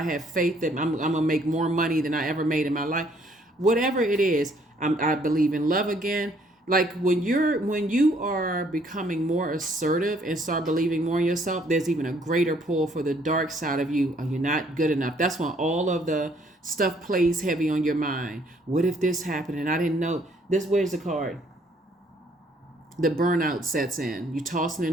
faith that I'm going to make more money than I ever made in my life. Whatever it is, I believe in love again. Like when you are becoming more assertive and start believing more in yourself, there's even a greater pull for the dark side of you. Are you not good enough? That's when all of the stuff plays heavy on your mind. What if this happened and I didn't know? Where's the card? the burnout sets in. You tossing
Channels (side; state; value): both; normal; correlation 0.64